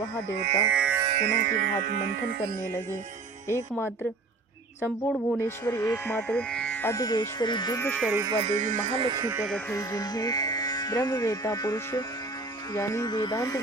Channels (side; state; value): left; quieter; 3.6 dB